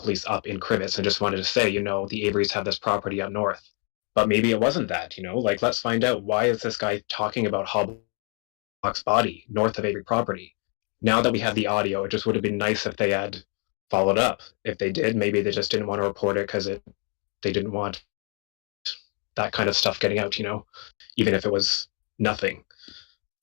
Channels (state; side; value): quieter; right; 39.1 dB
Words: up in Crivets and just wanted to say, the Averys have this property up north. But maybe it wasn't that, let's find out, why is this guy talking about Halbach's body north of Avery property? Now that we have the audio, it just would have been nice if they had followed up. If they did, maybe they just didn't want to report it because they didn't want that kind of stuff getting out, even if it was nothing.